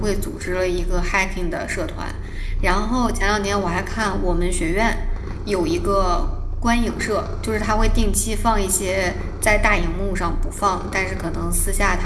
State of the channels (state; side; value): identical; both; correlation 1.00